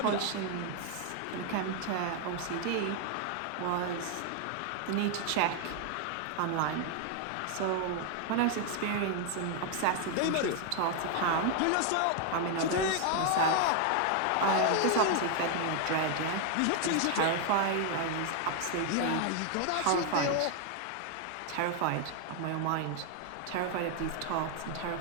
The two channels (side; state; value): both; different; correlation 0.00